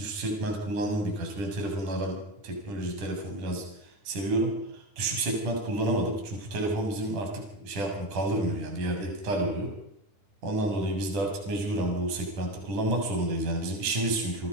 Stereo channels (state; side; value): late; left; 10 ms